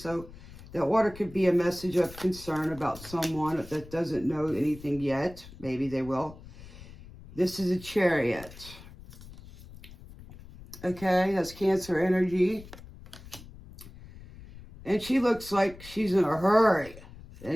that water could be a message of concern about someone that doesn't know anything yet. Maybe they will. This is a Chariot. Okay, that's Cancer energy. And she looks like she's in a hurry.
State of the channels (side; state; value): left; noise; rumble, 18 dB below the sound